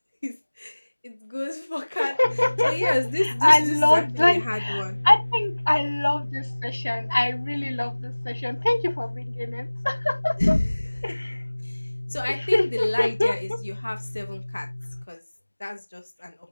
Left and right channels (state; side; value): inverted; both; correlation -1.00